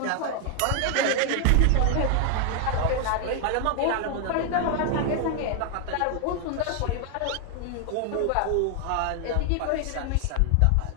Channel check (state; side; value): different; both; correlation 0.00